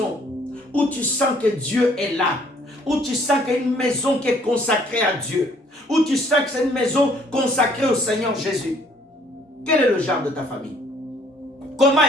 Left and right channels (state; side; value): normal; both; correlation 0.61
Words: où tu sens que Dieu est là, où tu sens qu'il y a une maison qui est consacrée à Dieu, où tu sens que c'est une maison consacrée au Seigneur Jésus. Quel est le genre de ta famille? Comment